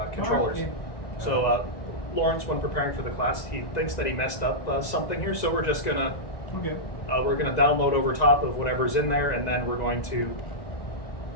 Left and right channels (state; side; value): late; right; 2.0 ms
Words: controllers. okay. So Lawrence, when preparing for the class, he thinks that he messed up something here. So we're just gonna Okay. we're gonna download over top of whatever's in there, and then we're going to